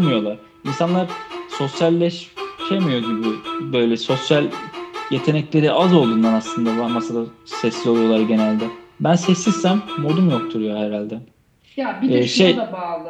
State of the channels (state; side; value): identical; both; correlation 1.00